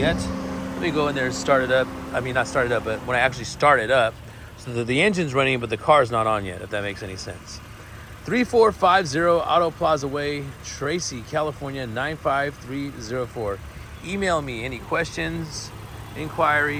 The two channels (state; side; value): identical; both; correlation 1.00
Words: Let me go in there and start it up. I mean, not start it up, but when I actually start it up, so that the engine's running, but the car's not on yet, if that makes any sense. 3450 Auto Plaza Way, Tracy, California, 95304. Email me any questions,